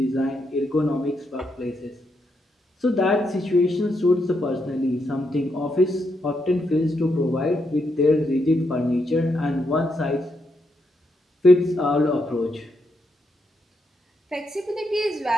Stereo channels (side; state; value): both; normal; correlation 0.80